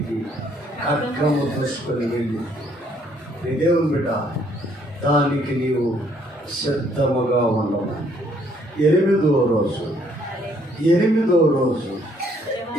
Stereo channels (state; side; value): normal; both; correlation 0.66